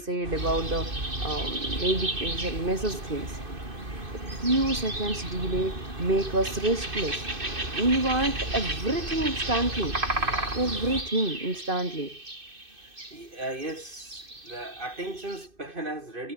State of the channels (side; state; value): left; late; 2.5 ms